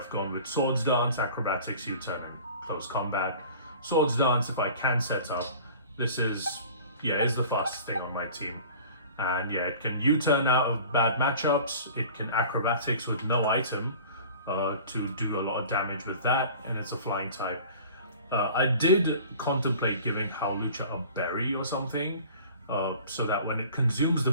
gone with Swords Dance, Acrobatics, U-turn, and Close Combat. Swords Dance, if I can set up, this is the fastest thing on my team. And yeah, it can U-turn out of bad matchups, it can Acrobatics with no item to do a lot of damage with that, and it's a flying type. I did contemplate giving Hawlucha a berry or something, so that when it consumes the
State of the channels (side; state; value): both; inverted; correlation -0.44